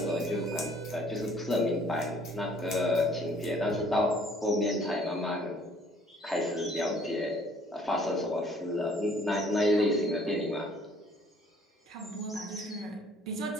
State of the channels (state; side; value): normal; both; correlation 0.58